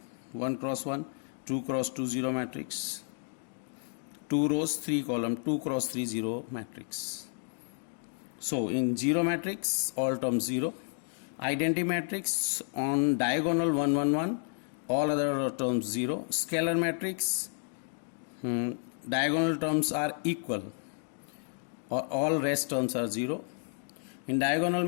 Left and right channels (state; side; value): silent; right; 57 dB below the other